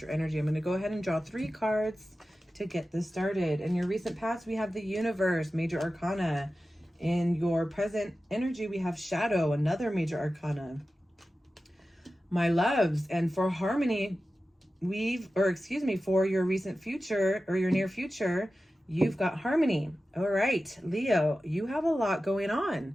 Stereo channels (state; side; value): normal; both; correlation 0.94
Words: energy? I'm going to go ahead and draw 3 cards to get this started. In your recent past, we have the Universe, Major Arcana. In your present energy, we have Shadow, another Major Arcana. My loves, and for harmony, for your recent future or your near future, you've got harmony. All right, Leo, you have a lot going